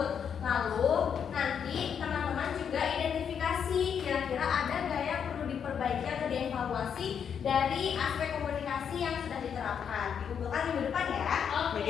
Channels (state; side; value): quieter; right; 7.6 dB